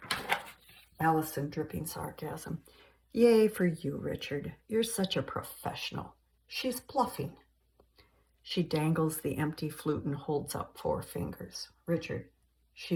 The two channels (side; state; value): both; identical; correlation 1.00